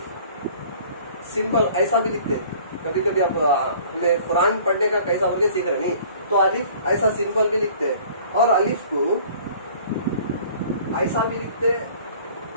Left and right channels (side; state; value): both; inverted; correlation -0.50